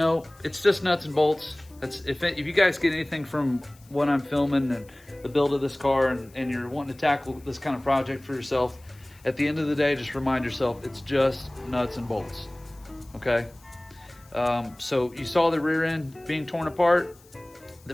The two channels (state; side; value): noise; left; hiss, 27 dB below the sound